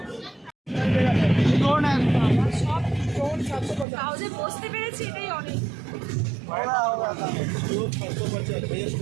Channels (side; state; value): left; drops out; at 3.9 s